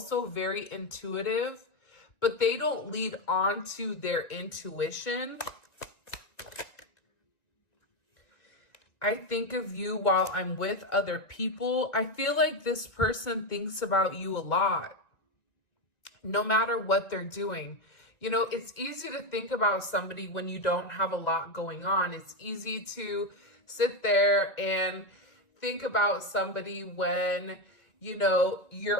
very intuitive, but they don't lead on to their intuition. I think of you while I'm with other people. I feel like this person thinks about you a lot, no matter what they're doing. You know, it's easy to think about somebody when you don't have a lot going on. It's easy to sit there and think about somebody when, you know,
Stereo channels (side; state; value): right; late; 1.9 ms